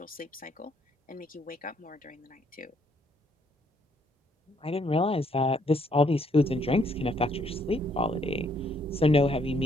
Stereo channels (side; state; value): both; normal; correlation 0.69